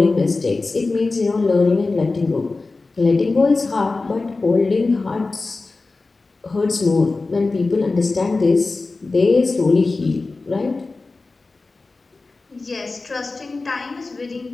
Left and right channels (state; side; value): quieter; right; 3.6 dB